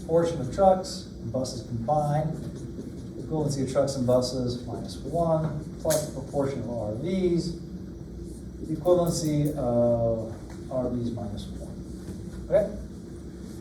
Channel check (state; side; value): identical; both; correlation 1.00